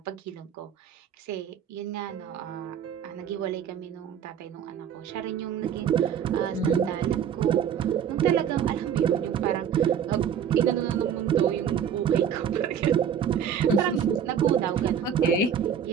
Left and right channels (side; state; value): left; quieter; 8.3 dB